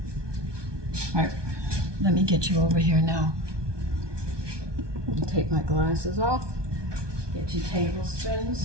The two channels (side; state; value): left; late; 1.2 ms